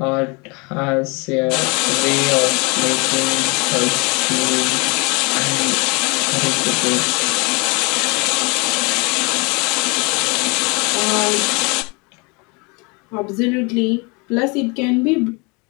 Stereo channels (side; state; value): right; quieter; 29.5 dB